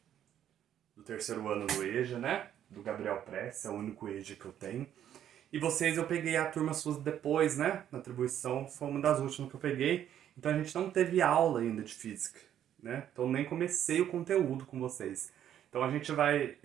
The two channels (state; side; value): quieter; left; 10.5 dB